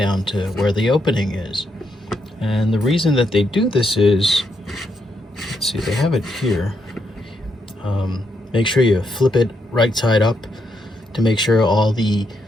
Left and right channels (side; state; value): both; normal; correlation 0.79